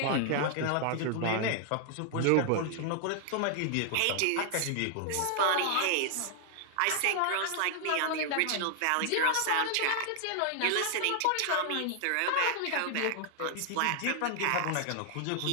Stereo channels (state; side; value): different; both; correlation 0.00